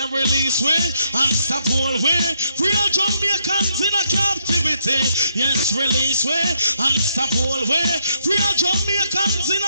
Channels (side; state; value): both; inverted; correlation -0.76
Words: release way and stop all way. Free all Jamaicans in a captivity. Yes, release way and stop all way. Free all Jamaicans in